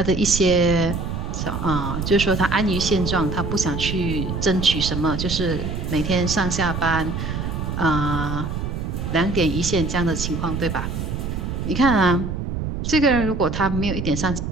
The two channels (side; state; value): right; noise; rumble, 4 dB below the sound